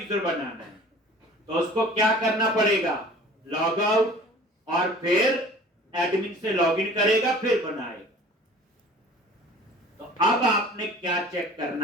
बनाना है, तो उसको क्या करना पड़ेगा? लॉग आउट और फिर एडमिन से लॉगिन करेगा फिर बनाएगा। तो अब आपने क्या चेक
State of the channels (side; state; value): both; normal; correlation 0.46